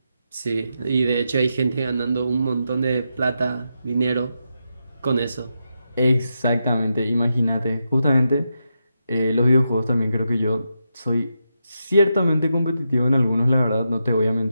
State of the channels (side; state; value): both; inverted; correlation -0.86